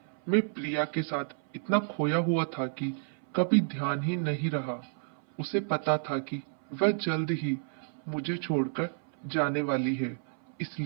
मैं प्रिया के साथ इतना खोया हुआ था कि कभी ध्यान ही नहीं रहा। उसे पता था कि वह जल्द ही मुझे छोड़कर जाने वाली है,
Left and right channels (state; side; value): silent; left; 57 dB below the other